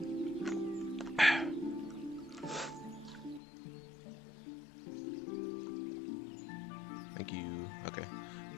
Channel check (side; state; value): right; drops out; at 3.4 s